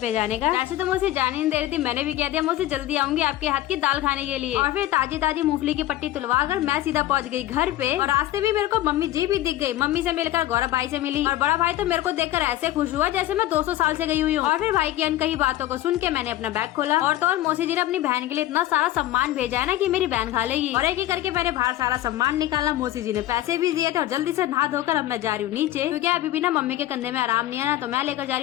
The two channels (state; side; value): quieter; right; 14.5 dB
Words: जाने का। वैसे तो मौसी जाने नहीं दे रही थी, मैंने भी कह दिया मौसी जल्दी आऊंगी आपके हाथ की दाल खाने के लिए। और फिर ताजी ताजी मूंगफली की पट्टी तुलवा कर मैं सीधा पहुंच गई घर पे। और रास्ते में मेरे को मम्मी जी भी दिख गई। मम्मी से मिलकर गौरव भाई से मिली और बड़ा भाई तो मेरे को देखकर ऐसे खुश हुआ जैसे मैं 200 साल से गई हुई हूँ। और फिर भाई की अनकही बातों को सुन के मैंने अपना बैग खोला और तो और मौसी जी ने अपनी बहन के लिए इतना सारा सम्मान भेजा है ना कि मेरी बहन खा लेगी। और एक एक करके मैंने बाहर सारा सम्मान निकाला। मौसी जी ने पैसे भी दिए थे और जल्दी से नहा धोकर अब मैं जा रही हूँ नीचे, क्योंकि अभी भी ना मम्मी के कंधे में आराम नहीं है ना, तो मैं लेकर जा रही